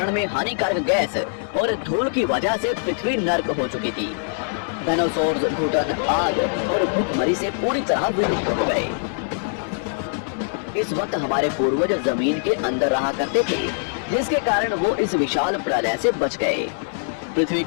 में हानिकारक गैस और धूल की वजह से पृथ्वी नर्क हो चुकी थी। डायनासोर्स घुटन, आग और भूखमरी से पूरी तरह विलुप्त हो गए। इस वक्त हमारे पूर्वज जमीन के अंदर रहा करते थे, जिसके कारण वो इस विशाल प्रलय से बच गए। पृथ्वी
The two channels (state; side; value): silent; right; 63 dB below the other